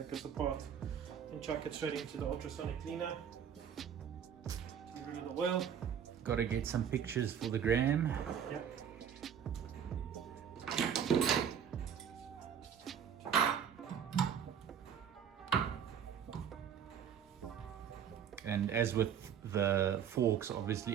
this apart and chuck it straight into the ultrasonic cleaner. Get rid of the oil. Gotta get some pictures for the gram. Yep. And as with the forks,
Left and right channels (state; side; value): quieter; left; 8.3 dB